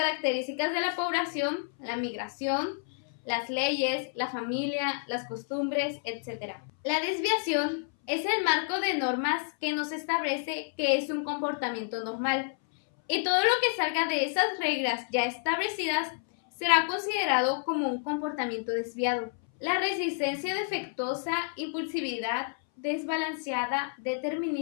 de la población, la migración, las leyes, la familia, las costumbres, etc. La desviación es el marco de normas que nos establece que es un comportamiento normal, y todo lo que salga de esas reglas ya establecidas será considerado como un comportamiento desviado. La resistencia defectuosa, impulsividad desbalanceada,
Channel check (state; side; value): silent; right; 58 dB below the other